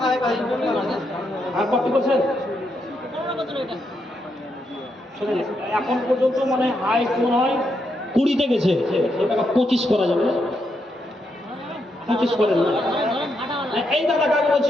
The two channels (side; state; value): both; normal; correlation 0.80